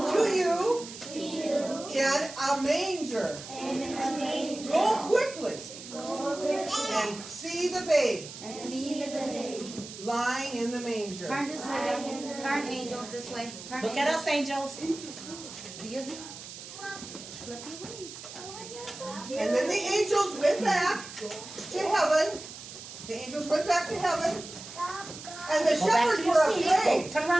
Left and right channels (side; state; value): right; noise; hiss, 13 dB below the sound